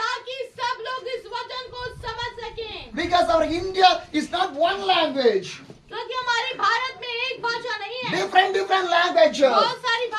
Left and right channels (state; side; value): identical; both; correlation 1.00